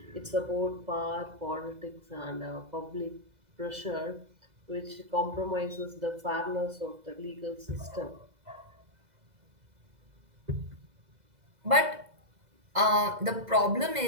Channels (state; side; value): late; left; 2.0 ms